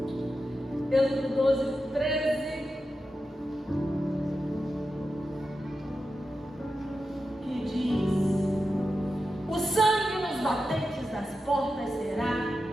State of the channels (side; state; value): both; normal; correlation 0.90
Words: Êxodo 12, 13. Que diz: o sangue nos batentes das portas será